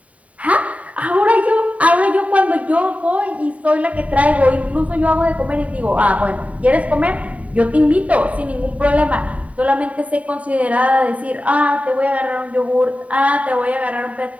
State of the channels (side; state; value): left; late; 0.068 ms